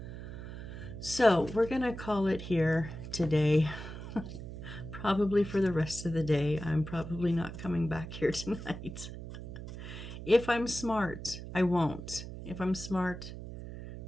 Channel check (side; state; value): right; noise; hum, 10 dB below the sound